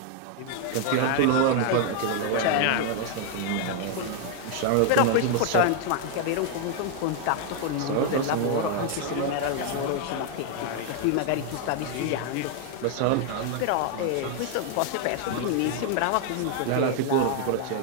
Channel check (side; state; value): both; different; correlation 0.00